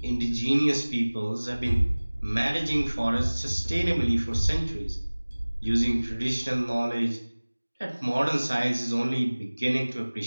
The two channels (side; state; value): both; inverted; correlation -1.00